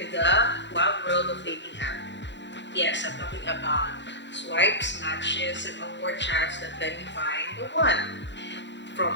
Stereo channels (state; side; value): late; right; 0.52 ms